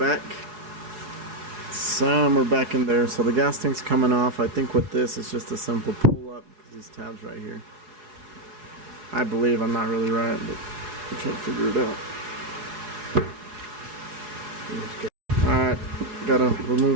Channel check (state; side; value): late; left; 4.8 ms